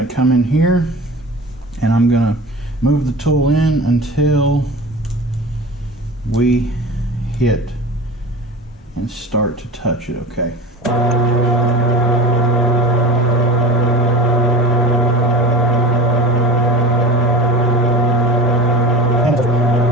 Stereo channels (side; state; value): both; normal; correlation 0.34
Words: to come in here and I'm going to move the tool in until we hit and start to touch it, okay?